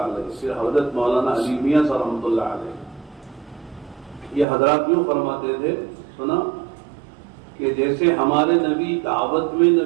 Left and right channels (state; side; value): drops out; left; at 4.5 s